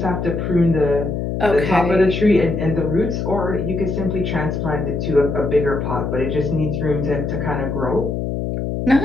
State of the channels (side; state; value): left; noise; hum, 3 dB below the sound